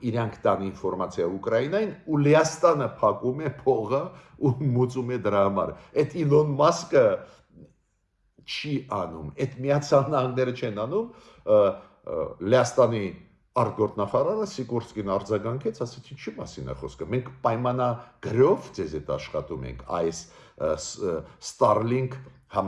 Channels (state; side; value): identical; both; correlation 1.00